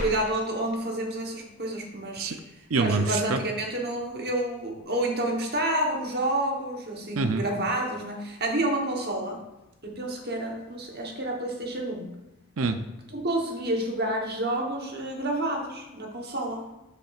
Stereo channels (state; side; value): normal; both; correlation 0.14